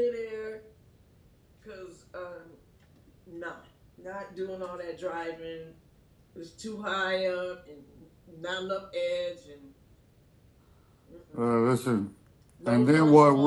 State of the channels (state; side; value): identical; both; correlation 1.00